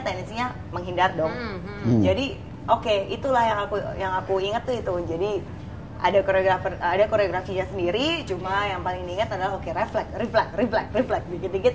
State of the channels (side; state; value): both; identical; correlation 1.00